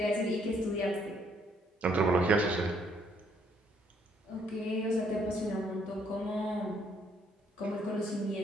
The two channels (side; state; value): both; normal; correlation 0.68